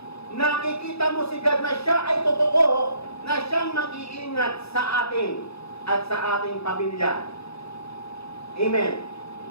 nakikita mo si God na siya ay totoo, na siyang mag-iingat sa atin at sa ating pamilya. Amen.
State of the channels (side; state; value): right; late; 0.78 ms